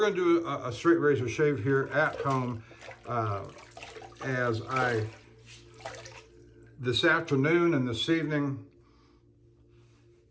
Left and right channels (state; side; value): identical; both; correlation 1.00